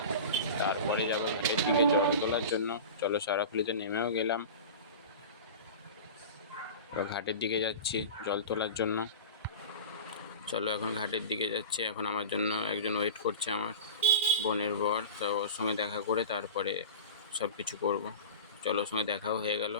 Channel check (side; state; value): both; inverted; correlation -0.32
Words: তারপরে যাবো ঘাটের দিকে জল তোলার জন্য। চলো, শেওড়াফুলিতে নেমেও গেলাম, এবার ঘাটের দিকে যাচ্ছি জল তোলার জন্য। চলো, এখন ঘাটের দিকে যাচ্ছি। এখন আমার জন্য একজন ওয়েট করছে, আমার বোনের বর। তো ওর সঙ্গে দেখা করে তারপরে সব কিছু করবো। চলো, ওর সঙ্গে দেখাও হয়ে গেল।